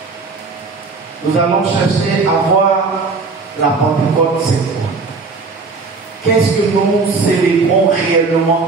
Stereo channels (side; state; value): left; quieter; 4.2 dB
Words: Nous allons chercher à voir la Pentecôte, c'est quoi? Qu'est-ce que nous célébrons